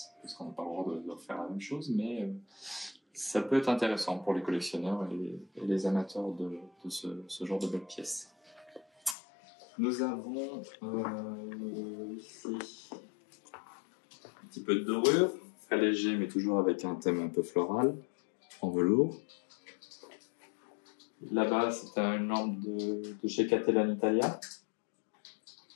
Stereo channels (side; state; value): right; drops out; at 9.2 s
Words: parce qu'on n'a pas le droit de refaire la même chose, mais ça peut être intéressant pour les collectionneurs et les amateurs de ce genre de belles pièces. Nous avons ici un petit peu de dorure, très léger mais toujours avec un thème un peu floral, en velours. Là-bas c'est une lampe de chez Catella Italia.